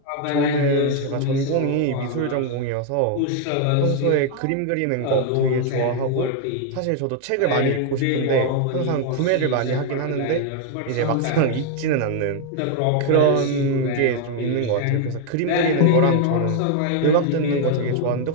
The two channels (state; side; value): different; both; correlation 0.00